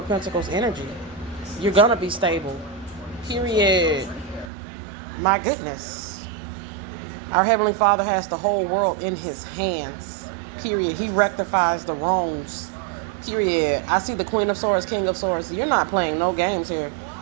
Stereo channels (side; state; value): left; drops out; at 4.5 s